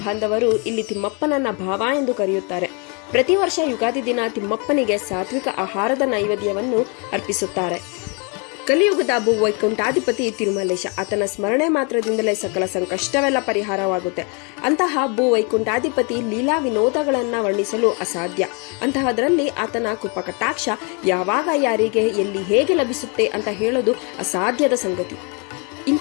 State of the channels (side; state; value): right; quieter; 34.2 dB